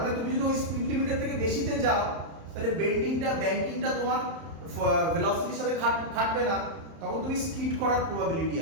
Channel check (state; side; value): late; left; 31 ms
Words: তুমি যদি ওই স্পিড লিমিটের থেকে বেশিতে যাও, তাহলে ব্যাংকিংটা তোমার ভেলোসিটির সাথে খাটবে না, তখন তুমি স্কিড করার প্রবাবিলিটি